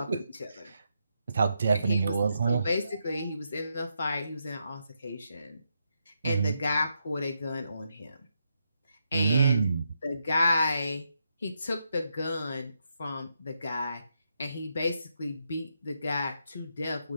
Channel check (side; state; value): both; inverted; correlation -0.81